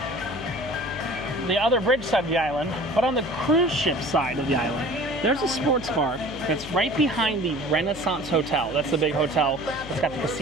the other bridge side of the island, but on the cruise ship side of the island. There's a sports bar that's right behind the Renaissance Hotel. That's the big hotel that's got the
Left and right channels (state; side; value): noise; left; hum, 15 dB below the sound